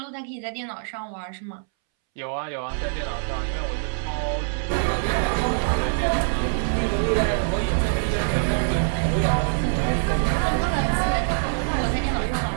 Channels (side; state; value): left; silent; 62 dB below the other